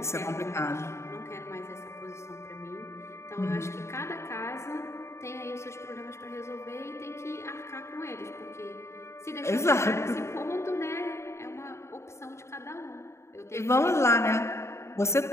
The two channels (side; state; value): right; late; 0.13 ms